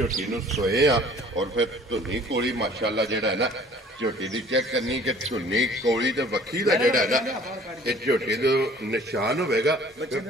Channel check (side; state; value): both; normal; correlation 0.52